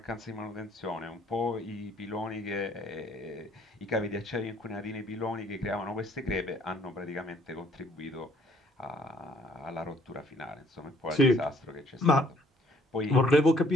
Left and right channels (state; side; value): normal; both; correlation 0.62